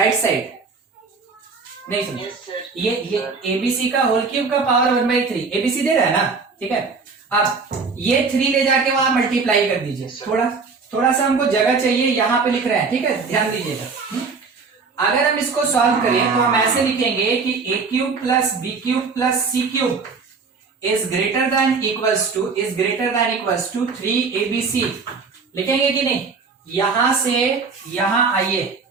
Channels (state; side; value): quieter; left; 4.7 dB